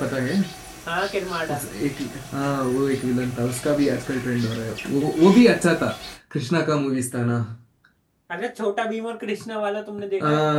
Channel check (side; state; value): both; identical; correlation 1.00